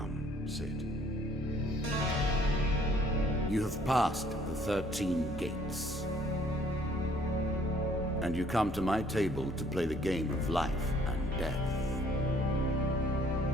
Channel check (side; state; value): both; normal; correlation 0.61